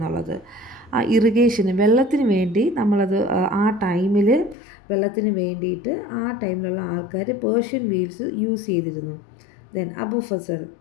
ആ ഇറിഗേഷന്, വെള്ളത്തിന് വേണ്ടി നമ്മളത് ആ ടൈമിൽ വെള്ളത്തിന് വേണ്ടിയിട്ട് ആ ടൈമിലുള്ള ആൾക്കാർ പേർഷ്യൻ വീൽസ് യൂസ് ചെയ്തിരുന്നു. Then Abu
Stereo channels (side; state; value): right; drops out; at 4.5 s